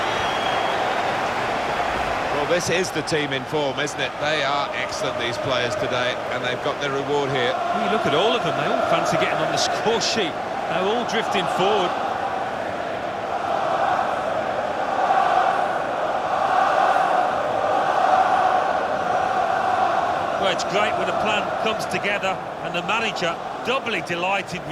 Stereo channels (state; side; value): identical; both; correlation 1.00